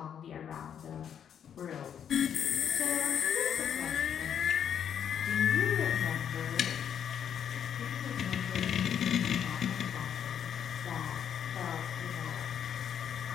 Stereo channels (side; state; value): right; quieter; 8.6 dB